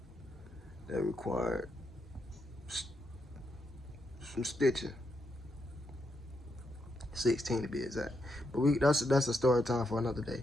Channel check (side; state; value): both; normal; correlation 0.81